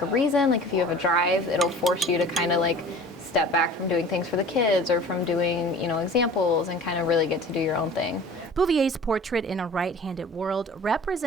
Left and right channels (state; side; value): normal; both; correlation 0.43